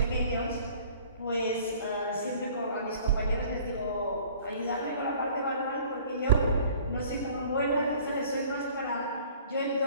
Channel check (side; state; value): both; inverted; correlation -0.51